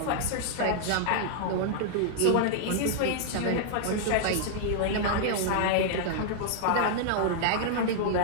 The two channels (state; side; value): different; both; correlation -0.01